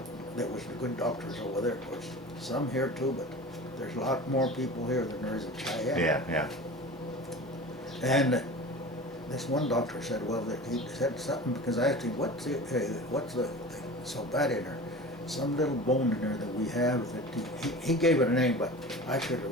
there was the good doctors over there, of course, some here too, but there's a lot more people here than there is in Cheyenne. Yeah. And this one doctor said, well, that he said something, because I asked him, what's the so bad in her? Some little bone in there that we have that he gave it a name, but I should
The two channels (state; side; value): normal; both; correlation 0.35